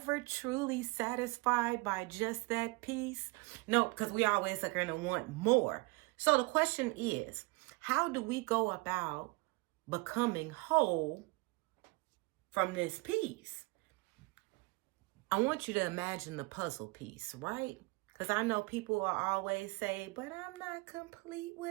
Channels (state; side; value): quieter; left; 26.2 dB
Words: truly satisfied by just that piece? No, because we always are going to want more. So the question is, how do we go about becoming whole from this piece? I want you to imagine the puzzle piece, right? Because I know people will always say, but I'm not complete